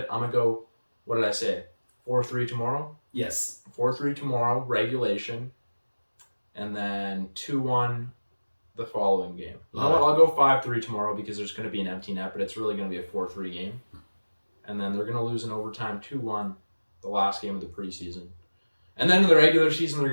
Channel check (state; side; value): inverted; both; correlation -1.00